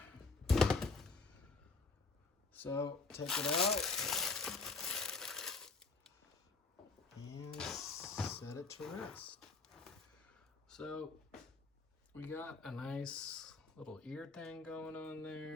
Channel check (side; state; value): right; quieter; 3.9 dB